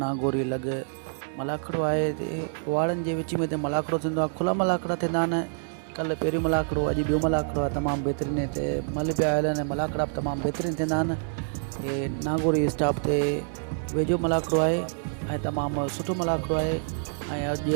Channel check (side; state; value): left; silent; digital silence